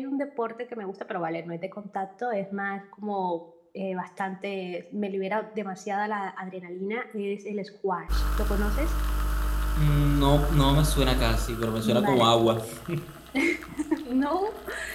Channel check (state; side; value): identical; both; correlation 1.00